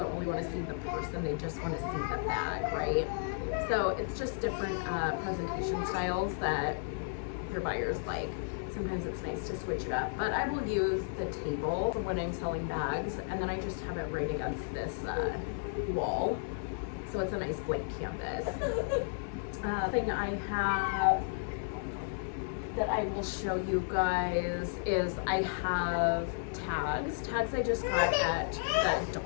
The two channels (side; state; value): right; silent; digital silence